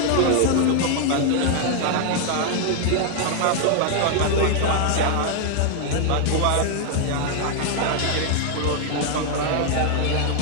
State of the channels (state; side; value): different; both; correlation 0.00